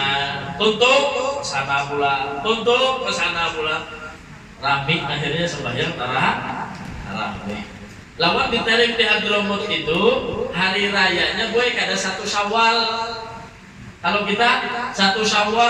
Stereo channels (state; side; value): identical; both; correlation 1.00